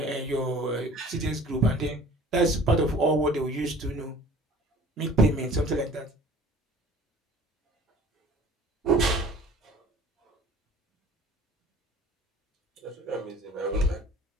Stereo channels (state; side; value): normal; both; correlation 0.47